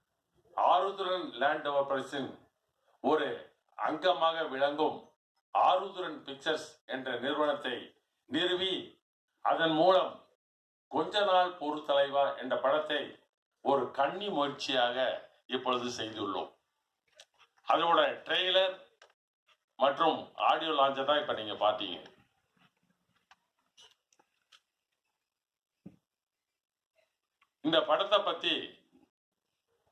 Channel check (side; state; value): both; identical; correlation 1.00